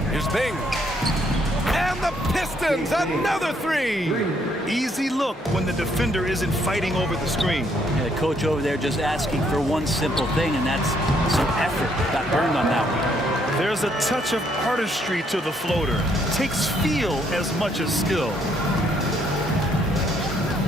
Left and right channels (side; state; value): both; normal; correlation 0.70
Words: Here's Bing. And the Pistons, another three. Easy look when the defender isn't fighting over the screen. Yeah, the coach over there just asking for one simple thing, and that's some effort. Got burned on that one. There's a touch of artistry to the floater. Takes feel as much as skill.